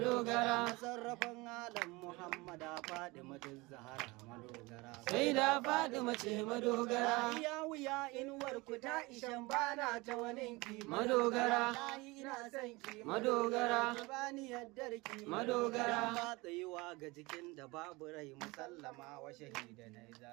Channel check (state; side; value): quieter; left; 23.6 dB